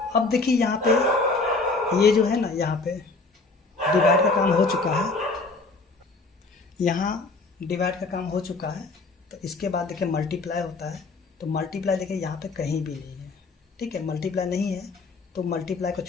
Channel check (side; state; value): right; quieter; 3.7 dB